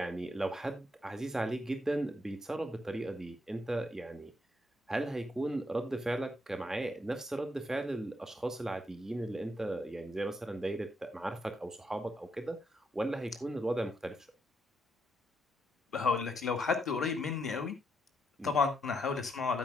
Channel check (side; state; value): both; normal; correlation 0.77